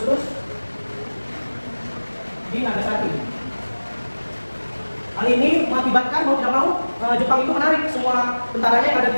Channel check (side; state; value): both; inverted; correlation -1.00